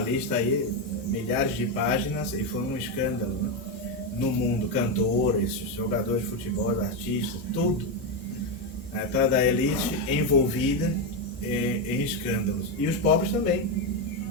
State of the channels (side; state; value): both; normal; correlation 0.08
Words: lista aí, milhares de páginas, e foi um escândalo, né? No mundo, cantores, jogadores de futebol, artistas, tudo. Atrás da elite envolvida em escândalos. E os pobres também.